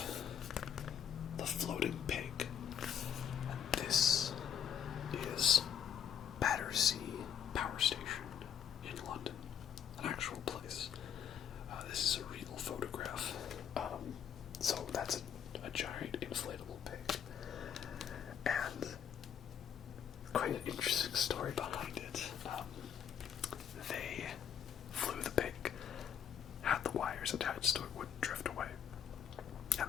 The Floating Pig. And this is Battersea Power Station in London, an actual place. This is a real photograph. So that's a giant inflatable pig. And quite an interesting story behind it. They flew the pig, had the wires attached so it wouldn't drift away,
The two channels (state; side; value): quieter; right; 8.6 dB